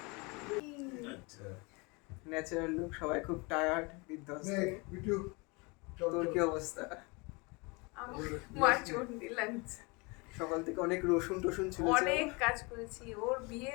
আচ্ছা ন্যাচারাল লুক, সবাই খুব টায়ার্ড, বিধ্বস্ত। তোর কি অবস্থা? আমার মার চন্ডি লাগছে। সকাল থেকে অনেক রসুন টসুন ছিল, অনেক কাজ করেছি, ওর বিয়ে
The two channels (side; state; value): right; quieter; 28.3 dB